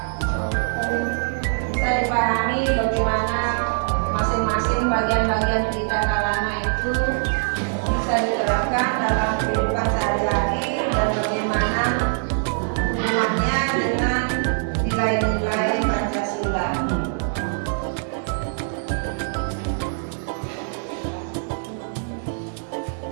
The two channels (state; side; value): silent; left; digital silence